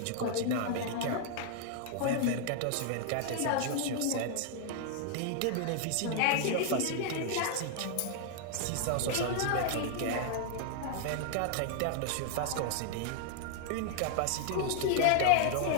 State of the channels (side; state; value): both; different; correlation 0.00